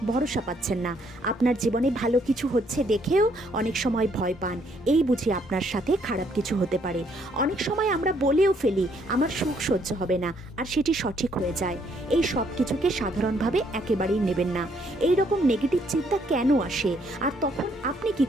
ভরসা পাচ্ছেন না, আপনার জীবনে ভালো কিছু হচ্ছে দেখেও অনেক সময় ভয় পান, এই বুঝি আপনার সাথে খারাপ কিছু হতে পারে। অনেক সময় আমরা বলেও ফেলি আমার সুখ সহ্য হবে না, আর সেটি সঠিক হয়ে যায়। এই সব কিছুকে সাধারণভাবে একেবারেই নেবেন না। এই রকম নেগেটিভ চিন্তা কেন আসে, আর তখন আপনি কি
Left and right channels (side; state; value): both; normal; correlation 0.69